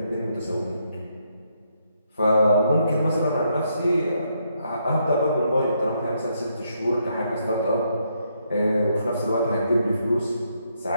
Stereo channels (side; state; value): both; inverted; correlation -0.76